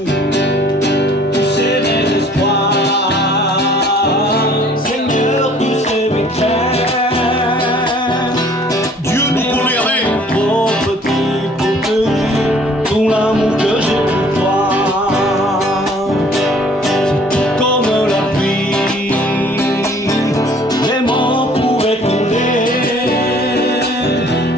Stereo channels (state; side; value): normal; both; correlation 0.55